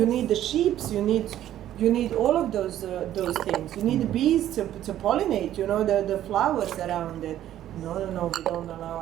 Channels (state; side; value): quieter; left; 12.2 dB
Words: the sheep. You need all of those things. You need the bees to pollinate. The flowers around it. No, we don't allow